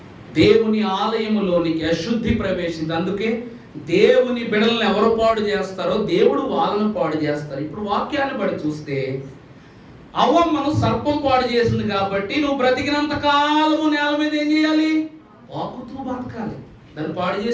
దేవుని ఆలయములోనికి అశుద్ధి ప్రవేశింది. అందుకే దేవుని బిడలను ఎవరు పాడు చేస్తారో దేవుడు వాళ్ళను పాడు చేస్తారు. ఇప్పుడు వాక్యాన్ని బట్టి చూస్తే అవ్వమ్మను సర్పం పాడు చేసింది కాబట్టి నువ్వు బ్రతికినంత కాలము నేల మీద ఏం చేయాలి, వాకుతూ బతకాలి. దాన్ని పాడు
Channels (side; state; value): both; identical; correlation 1.00